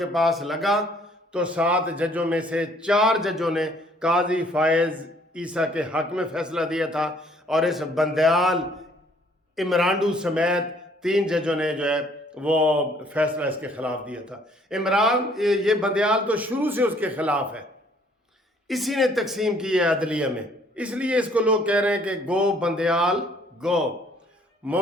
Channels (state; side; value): normal; both; correlation 0.61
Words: पास लगा, तो 7 जजों में से 4 जजों ने काजी फायज़ ईसा के हक में फैसला दिया था और इस बंदयाल इमरांडू समेत 3 जजों ने जो है वो फैसला इसके खिलाफ दिया था। इमरान ये बंदयाल तो शुरू से उसके खिलाफ है, इसी ने तकसीम की है अदलिया में, इसलिए इसको लोग कह रहे हैं कि गो बंदयाल गो,